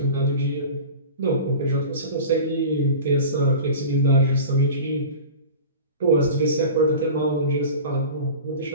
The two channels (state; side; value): inverted; both; correlation -0.36